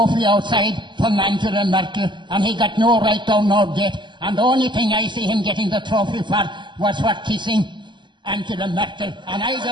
outside from Angela Merkel, and he got no right down nor gate. And the only thing I see him getting the trophy for was for kissing Angela Merkel. And I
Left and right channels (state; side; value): late; left; 0.22 ms